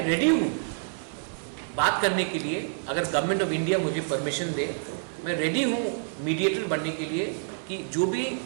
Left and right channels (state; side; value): silent; left; digital silence